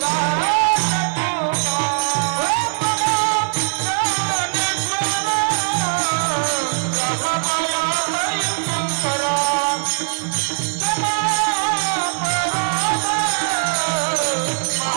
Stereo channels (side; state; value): left; silent; 66 dB below the other